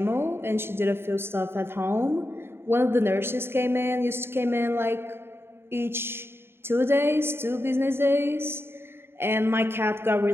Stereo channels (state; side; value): late; left; 0.11 ms